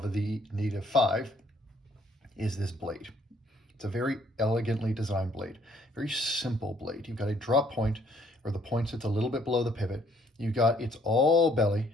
the Native 5 is this blade. It's a very elegantly designed blade, very simple blade. You've got a drop point where the point sits a little bit below the pivot. You've got, it's all belly.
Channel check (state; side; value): normal; both; correlation 0.64